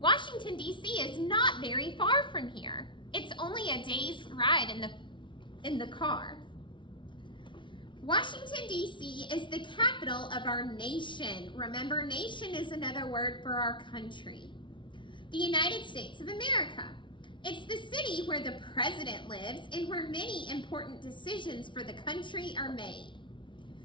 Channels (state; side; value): late; right; 0.24 ms